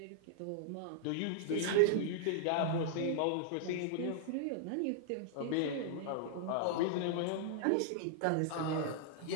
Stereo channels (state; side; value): different; both; correlation -0.01